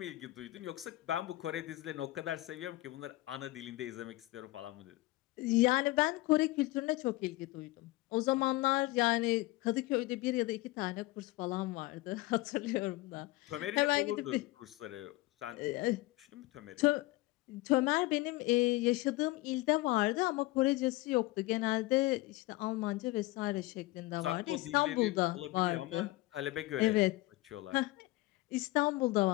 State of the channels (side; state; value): right; quieter; 19.7 dB